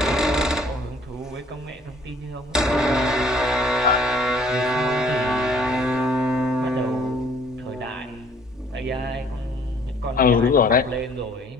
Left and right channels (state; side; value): normal; both; correlation 0.58